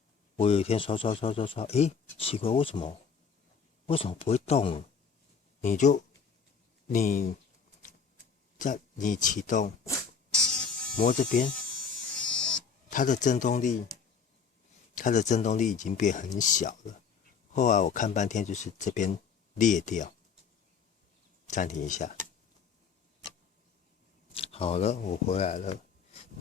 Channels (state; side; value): quieter; right; 6.1 dB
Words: 我有一天刷，奇怪，为什么不会动？你启动，摸这边，它的震动力已经变很小了。后来我看半天，就是这边裂掉。暂停一下，好了，我回来了。